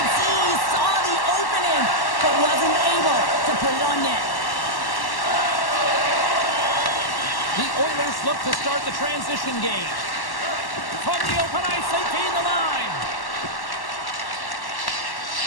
see he saw the opening, but wasn't able to put it on net. The Oilers look to start the transition game. From the open ice, they gain the line.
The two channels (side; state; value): right; late; 1.1 ms